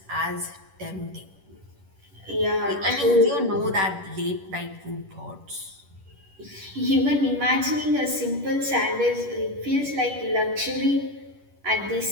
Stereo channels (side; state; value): left; late; 11 ms